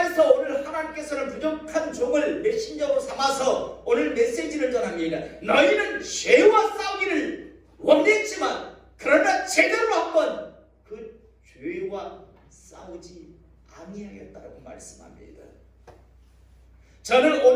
오늘 하나님께서는 부족한 종을 메신저로 삼아서 오늘 메시지를 전합니다. 너희는 죄와 싸우기를 원했지만 그러나 제대로 한번 그 죄와 싸우지 아니하였다라고 말씀합니다. 저는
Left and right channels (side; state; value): both; identical; correlation 1.00